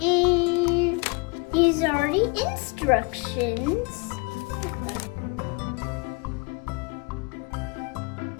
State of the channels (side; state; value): right; quieter; 29.5 dB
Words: And these are the instructions.